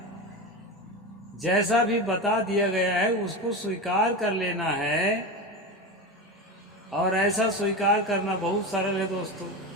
जैसा भी बता दिया गया है उसको स्वीकार कर लेना है। और ऐसा स्वीकार करना बहुत सरल है दोस्तों,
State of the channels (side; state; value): both; normal; correlation 0.22